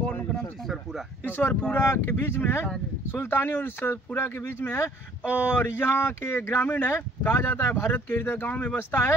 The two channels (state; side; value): normal; both; correlation 0.58